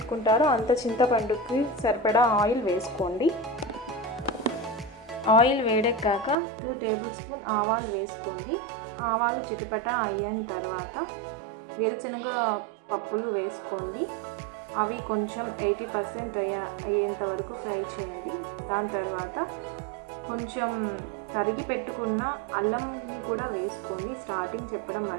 అంత చింతపండుకి సరిపడా ఆయిల్ వేసుకోండి. ఆయిల్ వేడెక్కాక 2 టేబుల్ స్పూన్ ఆవాలు వేసుకోండి. ఆవాలు చిటపట అయిన తర్వాత వేరుశనగ పప్పులు వేసుకోండి. అవి కొంచెం 80% అయ్యేంత వరకు ఫ్రై చేయండి. దాని తర్వాత కొంచెం తరిగి పెట్టుకున్న అల్లంని కూడా వేసుకోండి. స్టార్టింగ్ చెప్పడం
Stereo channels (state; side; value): drops out; left; at 6.4 s